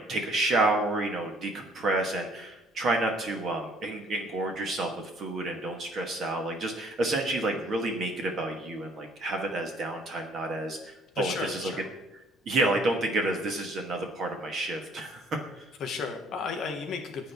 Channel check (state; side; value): normal; both; correlation 0.59